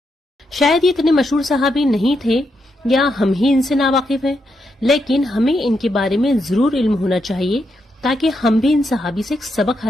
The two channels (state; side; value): normal; both; correlation 0.82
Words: شاید یہ اتنے مشہور صحابی نہیں تھے یا ہم ہی ان سے ناواقف ہیں، لیکن ہمیں ان کے بارے میں ضرور علم ہونا چاہیے تاکہ ہم بھی ان صحابی سے ایک سبق